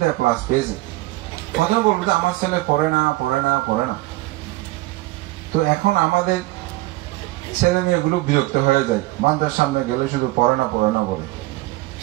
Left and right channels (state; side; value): quieter; left; 19.4 dB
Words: ক্লাস পেয়েছে। প্রথমে বলবো যে আমার ছেলে পড়ে না পড়ে না পড়ে না। তো এখন আমাদের ছেলে মেয়েগুলো বিরক্ত হয়ে যায়, বান্দার সামনে গেলে শুধু পড়ে না পড়ে না বলে।